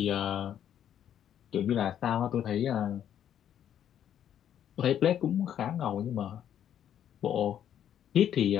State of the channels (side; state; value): right; quieter; 10.0 dB